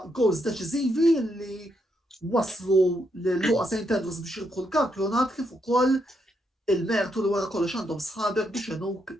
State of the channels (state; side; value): normal; both; correlation 0.78